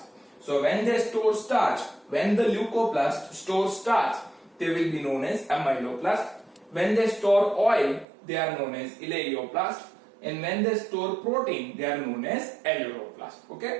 So when they store starch, when the leucoplast stores starch, they will be known as amyloplast. When they store oil, they are known as eleoplast, and when they store protein, they are known as aleuroplast.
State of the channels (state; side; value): drops out; left; at 8.1 s